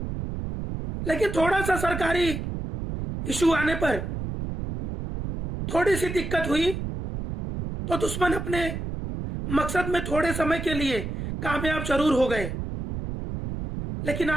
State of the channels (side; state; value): right; noise; rumble, 5 dB below the sound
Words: लेकिन थोड़ा सा सरकारी इशू आने पर, थोड़ी सी दिक्कत हुई तो दुश्मन अपने मकसद में थोड़े समय के लिए कामयाब जरूर हो गए। लेकिन